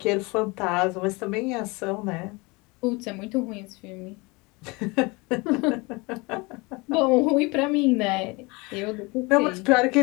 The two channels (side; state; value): right; quieter; 26.0 dB